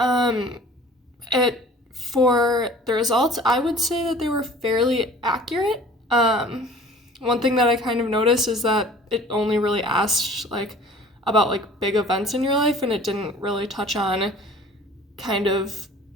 It For the results, I would say that they were fairly accurate. One thing that I kind of noticed is that it only really asked about big events in your life, and it didn't really touch on kind of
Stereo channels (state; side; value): normal; both; correlation 0.47